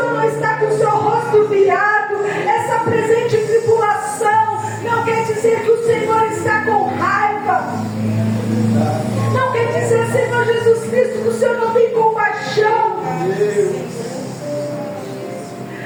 não está com o seu rosto virado. Essa presente tribulação não quer dizer que o Senhor está com raiva. Não quer dizer, Senhor Jesus Cristo, que o Senhor não tem compaixão.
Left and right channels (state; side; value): identical; both; correlation 1.00